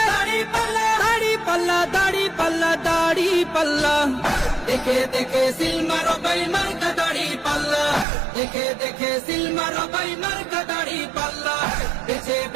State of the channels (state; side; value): drops out; left; at 8.1 s